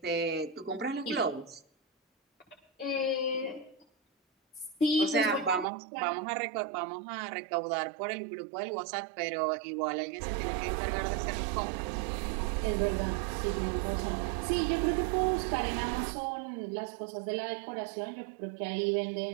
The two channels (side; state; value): left; drops out; at 5.7 s